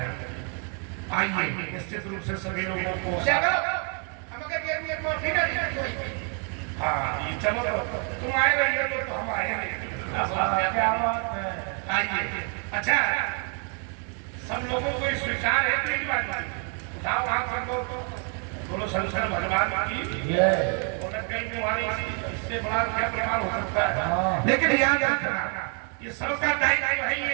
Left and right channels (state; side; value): quieter; left; 39.3 dB